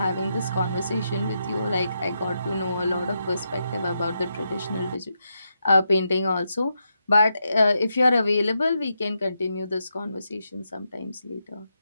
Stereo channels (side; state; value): both; inverted; correlation -0.84